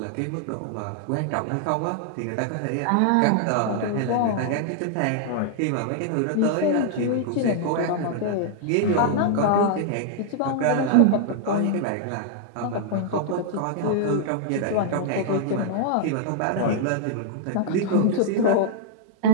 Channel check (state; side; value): different; both; correlation -0.01